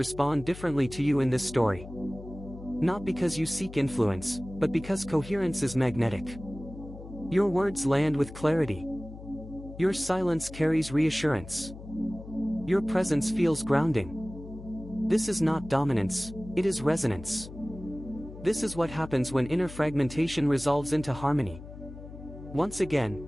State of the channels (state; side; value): noise; left; hum, 14 dB below the sound